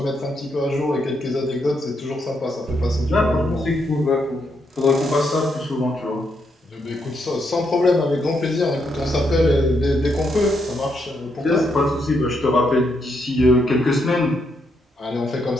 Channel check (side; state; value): both; normal; correlation 0.78